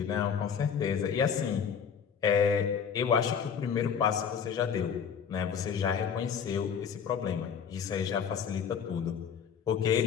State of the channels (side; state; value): right; quieter; 7.2 dB